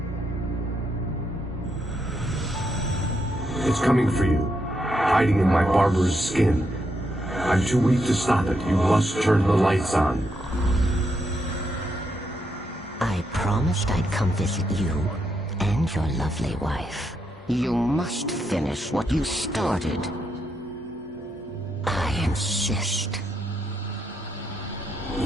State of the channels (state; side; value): normal; both; correlation 0.80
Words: coming for you, hiding in my barber's skin. I'm too weak to stop it. You must turn the lights on. I promised I'd come visit you and your lovely wife. You must finish what you started. I insist.